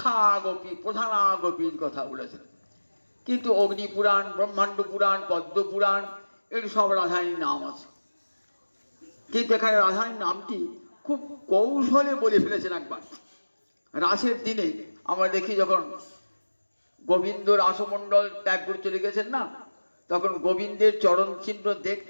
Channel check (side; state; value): both; inverted; correlation -1.00